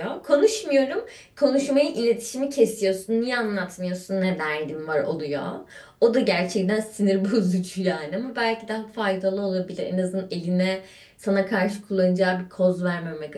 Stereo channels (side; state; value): both; identical; correlation 1.00